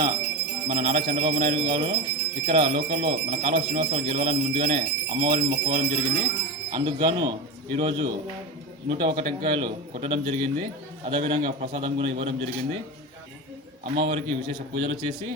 మన నారా చంద్రబాబు నాయుడు గారు ఇక్కడ లోకల్లో మన కాలువ శ్రీనివాసరావు గెలవాలని ముందుగానే అమ్మవారిని మొక్కుకోవడం జరిగింది. అందుకు గాను ఈరోజు 101 టెంకాయలు కొట్టడం జరిగింది. అదేవిధంగా ప్రసాదం కూడా ఇవ్వడం జరిగింది. అమ్మవారికి విశేష పూజలు చేసి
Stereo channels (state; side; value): normal; both; correlation 0.23